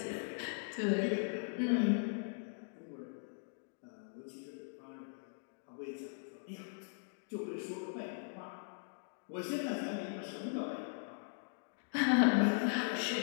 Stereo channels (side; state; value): right; silent; digital silence